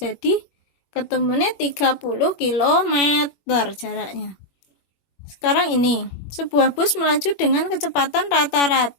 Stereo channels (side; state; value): right; late; 21 ms